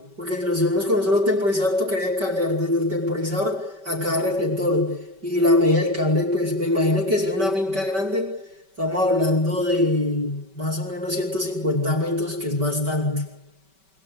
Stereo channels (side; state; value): left; late; 5.2 ms